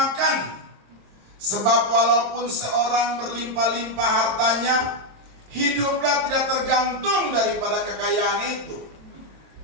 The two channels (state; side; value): late; left; 27 ms